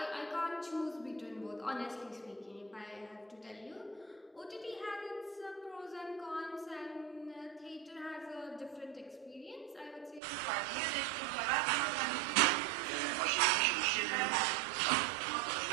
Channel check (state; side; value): drops out; left; at 10.2 s